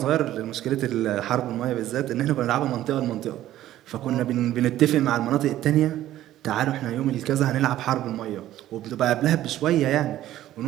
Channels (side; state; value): left; quieter; 13.5 dB